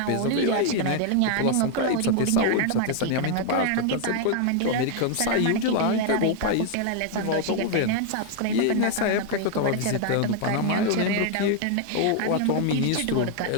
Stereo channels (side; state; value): both; different; correlation 0.00